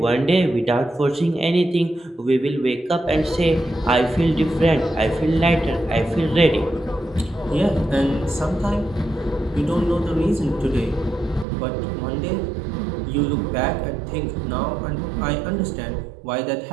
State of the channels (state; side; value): drops out; left; at 11.5 s